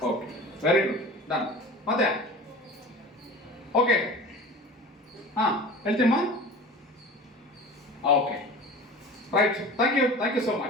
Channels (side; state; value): both; normal; correlation 0.38